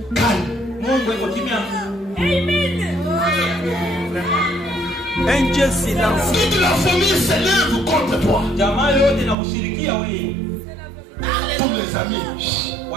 gagne. Mungu yuko kimya. Amen. Un Dieu silence. Toute la famille s'élève contre toi. Jamaa yote inakushirikia wewe. Tous les amis.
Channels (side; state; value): left; drops out; at 9.3 s